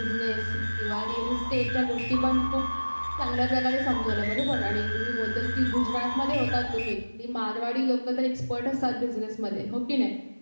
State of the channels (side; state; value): both; inverted; correlation -1.00